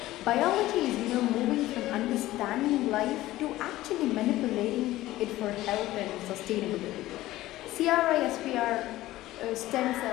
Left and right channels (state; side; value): quieter; right; 16.2 dB